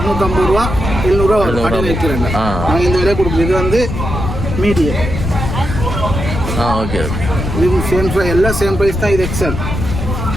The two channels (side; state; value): left; noise; rumble, 4 dB below the sound